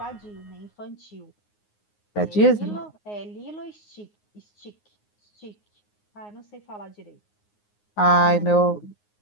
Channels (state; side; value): late; right; 9.6 ms